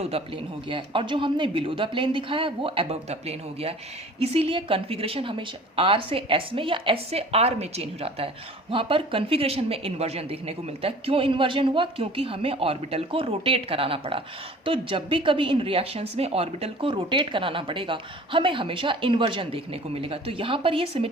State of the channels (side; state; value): both; normal; correlation 0.46